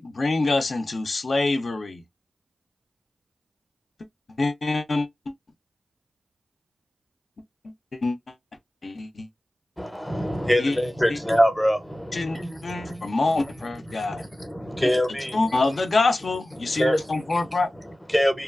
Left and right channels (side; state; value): both; normal; correlation 0.96